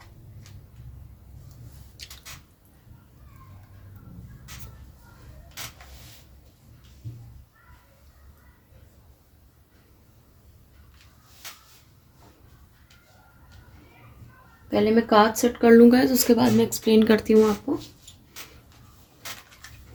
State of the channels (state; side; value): identical; both; correlation 1.00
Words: पहले मैं कार्ड सेट कर लूँगा, तो उसके बाद मैं एक्सप्लेन करती हूँ आपको।